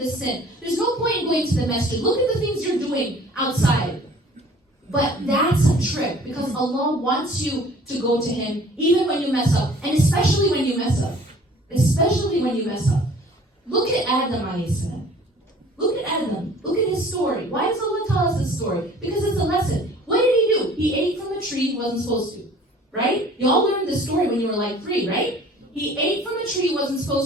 sin. There's no point in going to the masjid. Look at the things you're doing outside. But that's a trick, because Allah wants you to go to Him even when you mess up, and especially when you mess up. Especially when you mess up. Look at Adam alayhi salam. Look at Adam. Look at his story. Why does Allah tell us this story? Because it's a lesson. What did he do? He ate from a tree he wasn't supposed to. Right? You all learned this story when you were like 3, right? He ate from a tree he wasn't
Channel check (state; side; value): normal; both; correlation 0.50